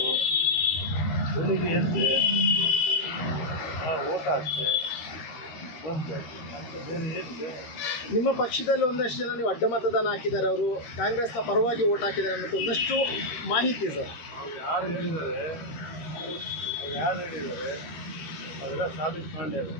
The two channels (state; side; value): late; right; 13 ms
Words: ಬೆಳಿಗ್ಗೆ ಎದ್ದೆ ಓಟ್ ಹಾಕ್ತೆ ಬಂದೆ. ಮತ್ತೆ ಬೇರೆ ಏನಿದೆ? ನಿಮ್ಮ ಪಕ್ಷದಲ್ಲಿ ಒಂದಷ್ಟು ಜನ ನೀವು ಅಡ್ಡ ಮತದಾನ ಹಾಕಿದ್ದಾರೆ, ಅವರು ಕಾಂಗ್ರೆಸ್ನ ಪರವಾಗಿ ಓಟ್ ಹಾಕಿದ್ದಾರೆ ಅನ್ನೋದು ಒಂದಷ್ಟು ಮಾಹಿತಿ ಸರ್. ಅವ್ರು ಯಾರು ಹೇಳಿದ್ದಾರೆ ಅದೆಲ್ಲ ಸಾಬೀತು ಮಾಡ್ಯಾರ.